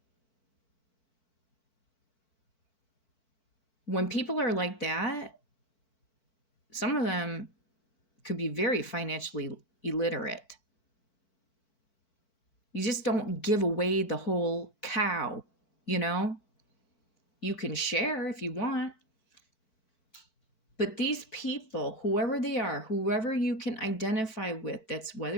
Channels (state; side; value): late; right; 4.5 ms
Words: When people are like that, some of them could be very financially illiterate. You just don't give away the whole cow, You can share if you want. But these people, whoever they are, whoever you can identify with, that's